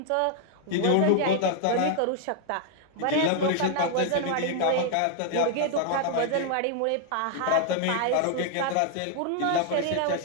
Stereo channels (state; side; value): different; both; correlation 0.00